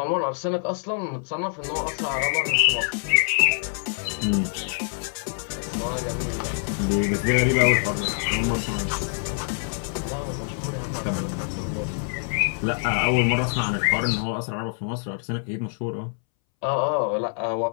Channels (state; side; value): silent; right; 62 dB below the other